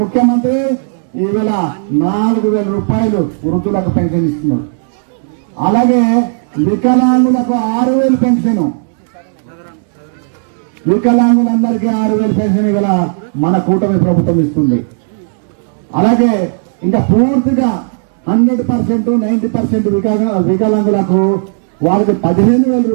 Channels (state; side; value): silent; left; digital silence